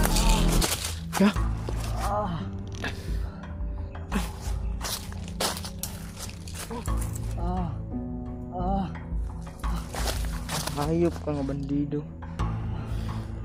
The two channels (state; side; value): identical; both; correlation 1.00